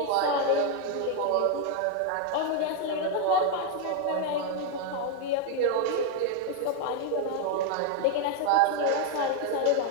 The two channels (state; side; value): different; both; correlation 0.01